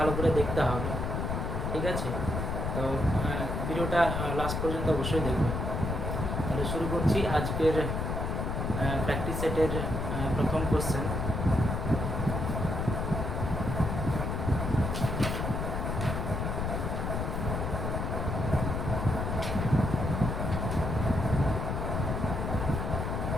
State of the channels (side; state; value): left; noise; rumble, 2 dB below the sound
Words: করে দেখতে হবে, ঠিক আছে? তো ভিডিওটা লাস্ট পর্যন্ত অবশ্যই দেখবেন। তাহলে শুরু করছি আজকের প্র্যাকটিস সেটের প্রথম কোশ্চেন।